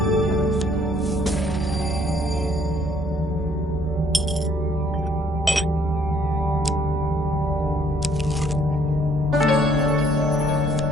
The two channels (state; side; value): normal; both; correlation 0.64